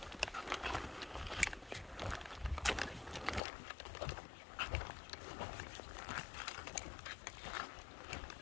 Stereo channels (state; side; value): drops out; right; at 3.4 s